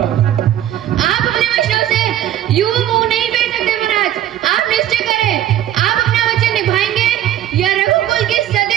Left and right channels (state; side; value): quieter; left; 12.1 dB